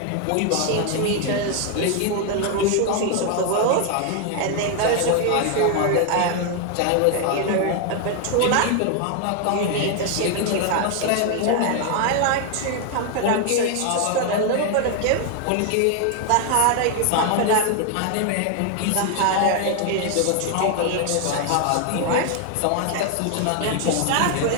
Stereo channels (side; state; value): both; different; correlation 0.01